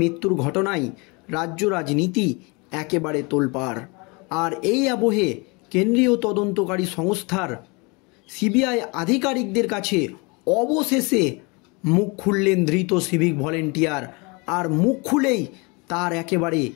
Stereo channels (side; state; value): right; quieter; 28.7 dB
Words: ঘটনায় রাজ্য রাজনীতি একেবারে তোলপাড়। আর এই আবহে কেন্দ্রীয় তদন্তকারী সংস্থার সিবিআই আধিকারিকদের কাছে অবশেষে মুখ খুললেন ধৃত সিভিক ভলেন্টিয়ার। আর মুখ খুলেই তার একেবারে